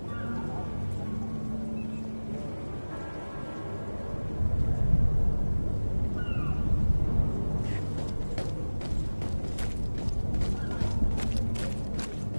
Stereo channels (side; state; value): both; inverted; correlation -1.00